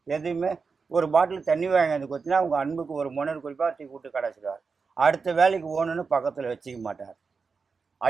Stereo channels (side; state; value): left; quieter; 5.0 dB